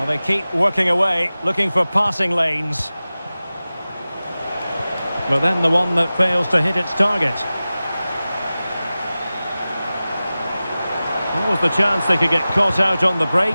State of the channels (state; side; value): inverted; both; correlation -0.96